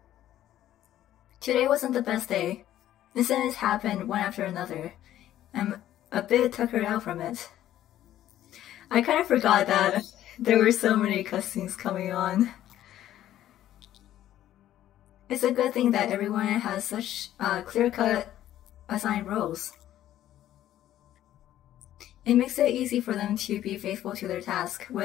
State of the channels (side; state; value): right; quieter; 12.6 dB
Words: Today wasn't the best day. Incidents happened one after another. I'm a bit tuckered out from it. I kind of forgot that there were so many cutscenes coming on. It's a good thing that everyone has such clear-cut assigned roles. It makes it easy for them to be faithful to their task,